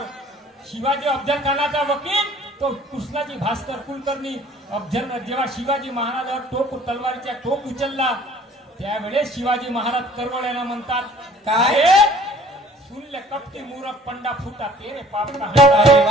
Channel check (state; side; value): normal; both; correlation 0.53